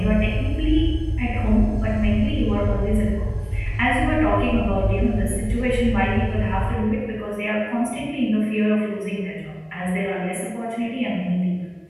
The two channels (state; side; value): identical; both; correlation 1.00